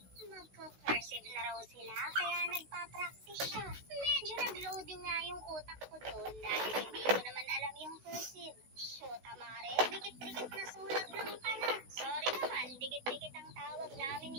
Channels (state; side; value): late; left; 16 ms